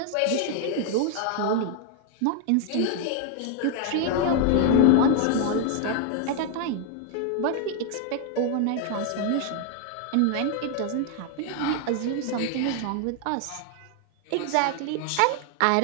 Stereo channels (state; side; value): different; both; correlation 0.00